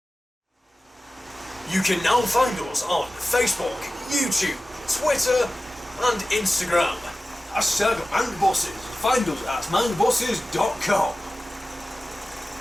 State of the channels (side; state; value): both; normal; correlation 0.95